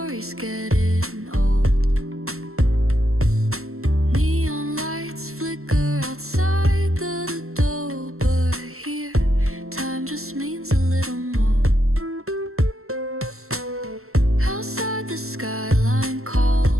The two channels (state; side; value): late; left; 0.63 ms